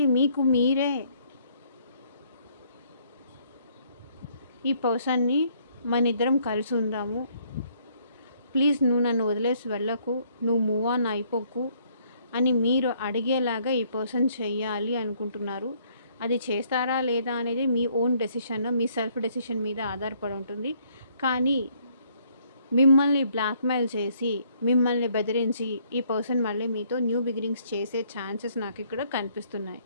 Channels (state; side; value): inverted; both; correlation -0.66